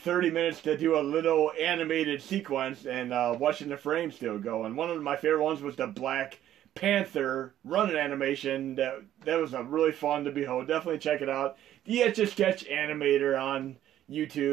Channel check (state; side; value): quieter; left; 12.0 dB